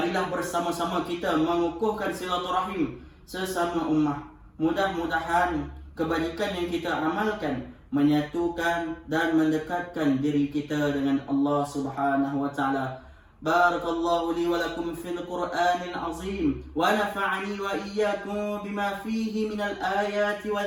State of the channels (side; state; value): both; identical; correlation 1.00